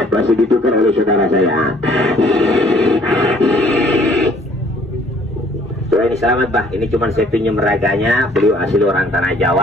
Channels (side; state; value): both; normal; correlation 0.59